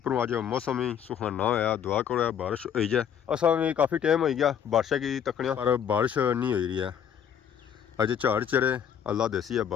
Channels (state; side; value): quieter; right; 8.6 dB